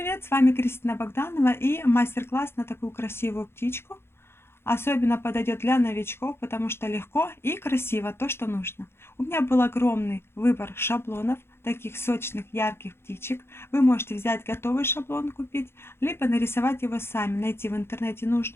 С вами Кристина Богданова и мастер-класс на такую красивую птичку. Особенно подойдет для новичков, потому что легко и красиво то, что нужно. У меня был огромный выбор шаблонов, таких сочных, ярких птичек. Вы можете взять готовый шаблон купить, либо нарисовать его сами, найти в интернете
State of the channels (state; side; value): late; right; 0.12 ms